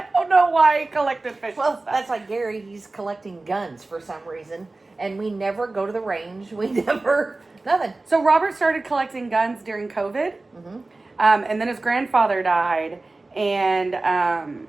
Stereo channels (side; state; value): left; quieter; 3.2 dB